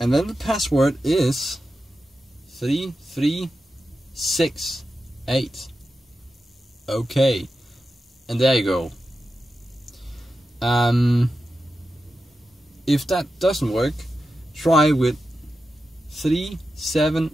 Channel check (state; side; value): normal; both; correlation 0.91